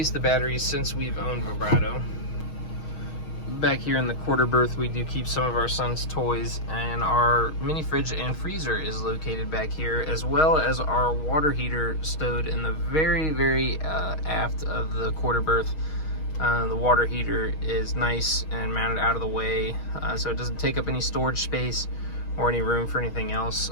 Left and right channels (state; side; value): late; right; 6.4 ms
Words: the batteries since we've owned Vibrato. Back here in the quarter berth, we do keep some of our son's toys, and our mini fridge and freezer is located back here, as well as our water heater stowed in the very aft of the quarter berth. The water heater is nice and mounted out of the way, so it doesn't take up any storage space or any room for anything else.